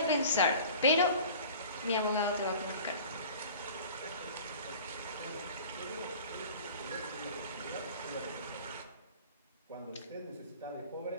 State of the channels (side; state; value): both; inverted; correlation -0.43